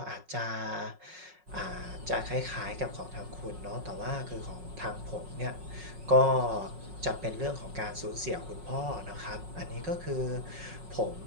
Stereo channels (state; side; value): late; left; 5.4 ms